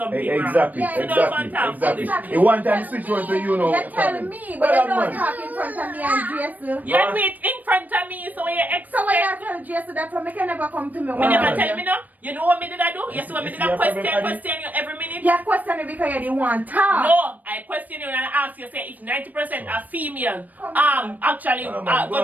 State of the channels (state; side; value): late; left; 0.081 ms